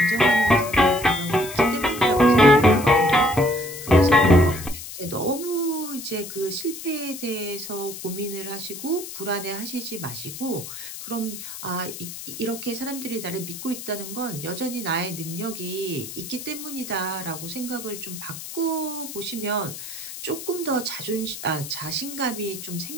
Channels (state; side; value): noise; left; hiss, 10 dB below the sound